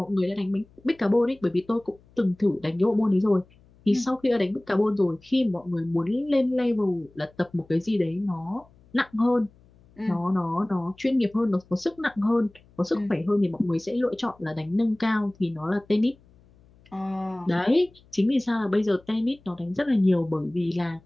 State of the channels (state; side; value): noise; left; hum, 29 dB below the sound